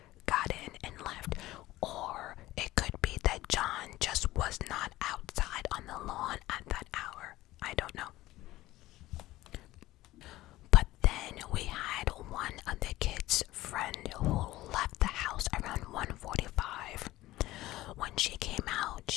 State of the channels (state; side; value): quieter; right; 16.8 dB